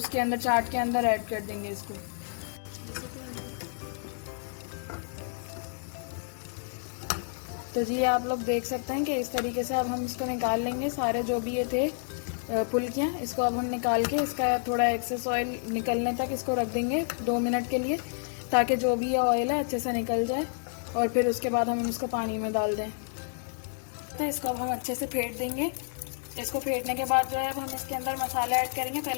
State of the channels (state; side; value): silent; right; digital silence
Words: अंदर चाट के अंदर ऐड कर देंगे इसको। तो जी आप लोग देख सकते हैं कि इस तरीके से अब हम इसको निकाल लेंगे सारे जो भी ये थे फुल्कियाँ। इसको अब हम निकाल के इसका थोड़ा एक्सेस ऑयल निकलने तक इसको रख देंगे 2 मिनट के लिए ताकि जो भी ये ऑयल है अच्छे से निकल जाए। और फिर उसके बाद हम इसको पानी में डाल दें। तो इसको अब हम अच्छे से फेंट देंगे। इसको फेंटने के बाद जो है अब हम इसके अंदर मसाला ऐड करेंगे।